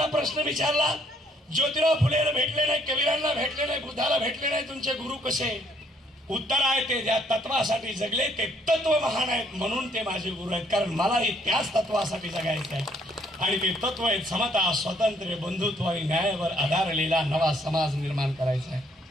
प्रश्न विचारला, ज्योतिराव फुलेला भेटले नाही, कबीरांना भेटले नाही, बुद्धाला भेटले नाही, तुमचे गुरु कसे? उत्तर आहे ते ज्या तत्वासाठी जगले ते तत्व महान आहेत म्हणून ते माझे गुरु आहेत. कारण मलाही त्याच तत्वासाठी जगायचं आहे आणि ते तत्व आहेत समता, स्वातंत्र्य, बंधुत्व आणि न्यायावर आधारलेला नवा समाज निर्माण करायचा आहे.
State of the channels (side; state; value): both; normal; correlation 0.66